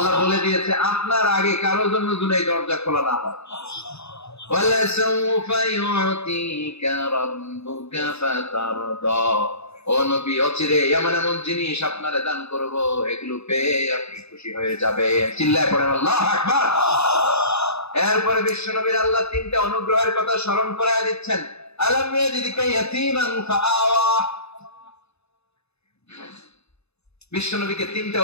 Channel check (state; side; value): late; right; 0.79 ms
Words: বলে দিয়েছে আপনার আগে কারো জন্য যেন এই দরজা খোলা না হয়। ওয়ালা সাউফা ইউতিকা রাব্বুকা ফাতারদা, ও নবী অচিরে এমন এমন জিনিস আপনারে দান করব, এগুলো পেয়ে আপনি খুশি হয়ে যাবেন। চিল্লায় পড়েন আল্লাহু আকবার। এরপরে বিশ্বনবীর আল্লাহ তিনটা অনুগ্রহের কথা স্মরণ করায় দিচ্ছেন। আলাম ইয়াজিদকা ইয়াতীমান ফাআওয়া, বিশ্বনবীকে তিনটা